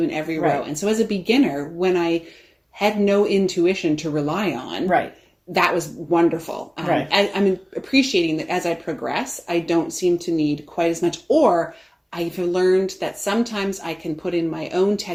in every row. And so as a beginner, when I had no intuition to rely on, that was wonderful. I'm appreciating that as I progress, I don't seem to need quite as much, or I've learned that sometimes I can put in my own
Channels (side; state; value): both; identical; correlation 1.00